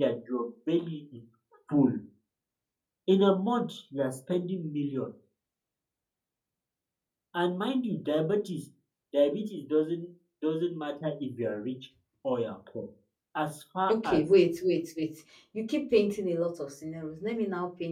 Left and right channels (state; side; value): identical; both; correlation 1.00